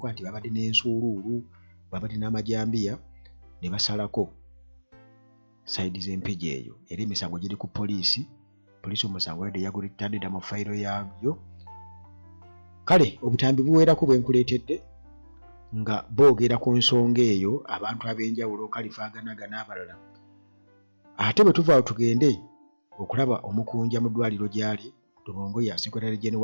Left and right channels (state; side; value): inverted; both; correlation -1.00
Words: nti babadde n'ensuuluulu babadde n'amajambiya ne basalako saidi z'empigi eyo era emisango giri ku poliisi omusango wadde yagulitandida mu fayiro yaabyo. Kale obutambi buweerako bwe nkuleetedde nga boogera ku nsonga eyo abantu ab'enjawulo Kalifaaganaga n'abalala. Ate bwe tuvaawo tugende okulaba omukunja mu ddwaliro gy'ali Tubongo ya Secretary General